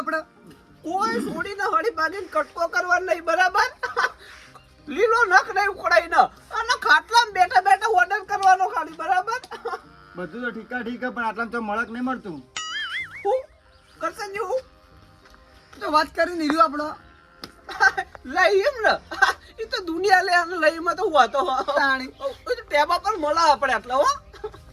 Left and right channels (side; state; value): both; identical; correlation 1.00